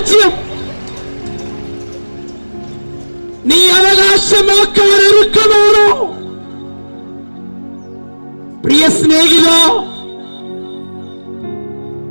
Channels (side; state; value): both; inverted; correlation -1.00